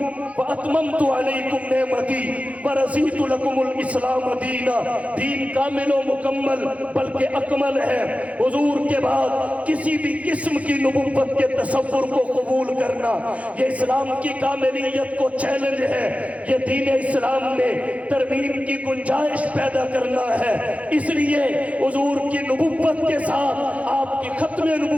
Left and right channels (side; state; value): left; late; 0.066 ms